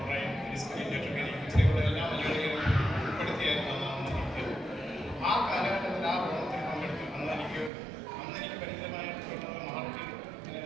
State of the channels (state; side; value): drops out; left; at 7.7 s